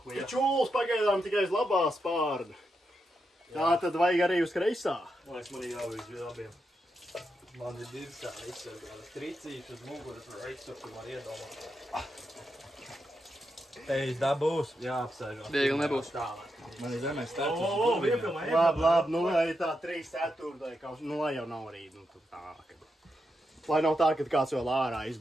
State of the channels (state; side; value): normal; both; correlation 0.85